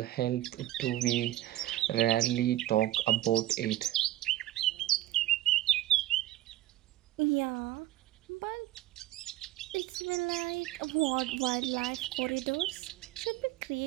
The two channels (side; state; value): left; quieter; 15.1 dB